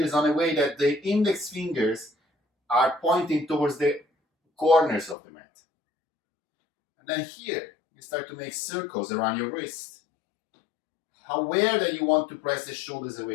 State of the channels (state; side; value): drops out; right; at 5.2 s